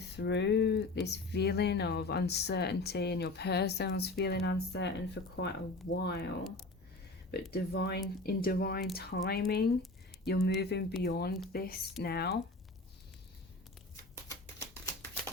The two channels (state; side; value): quieter; right; 3.0 dB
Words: this feeling of uncertainty, and your person was feeling uncertain for quite a while. But in divine timing, you're moving beyond this now.